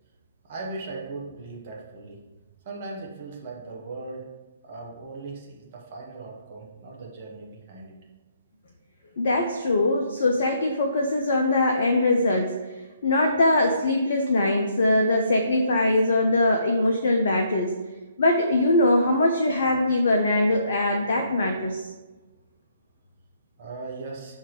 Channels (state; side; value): inverted; both; correlation -0.71